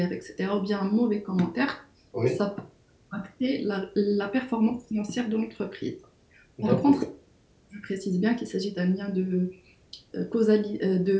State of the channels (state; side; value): identical; both; correlation 1.00